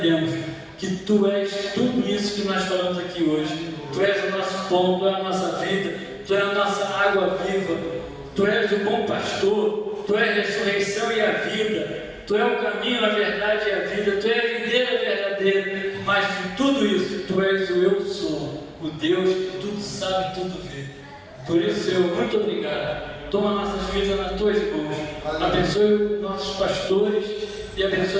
que tu és tudo isso que nós falamos aqui hoje. Tu és o nosso pão, tu és a nossa vida, tu és a nossa água viva, tu és o bom pastor, tu és a ressurreição e a vida, tu és o caminho, a verdade e a vida, tu és a videira verdadeira, mas de tudo isso, tu és o eu sou, o Deus que tudo sabe, tudo vê. Por isso, Senhor, muito obrigado. Toma nossas vidas nas tuas mãos, abençoe os nossos pastores e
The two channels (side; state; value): both; identical; correlation 1.00